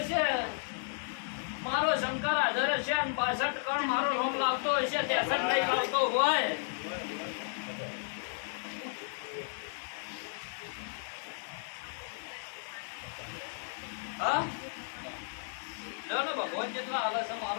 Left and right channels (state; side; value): silent; right; digital silence